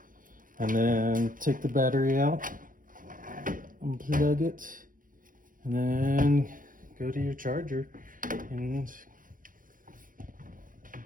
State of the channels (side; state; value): left; late; 0.40 ms